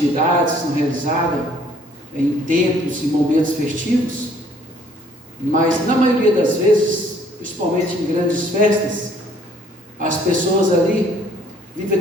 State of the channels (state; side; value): normal; both; correlation 0.60